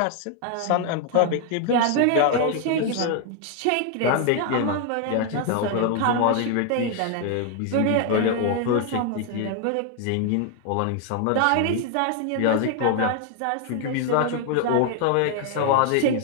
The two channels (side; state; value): both; different; correlation 0.00